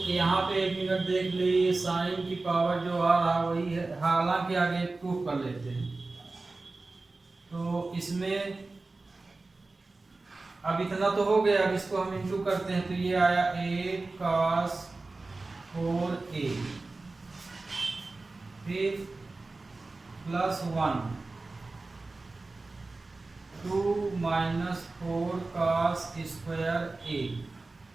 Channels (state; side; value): quieter; left; 3.4 dB